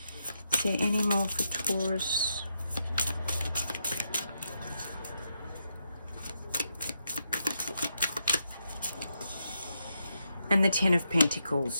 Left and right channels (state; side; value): inverted; both; correlation -0.82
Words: Is there any more for Taurus? And the Ten of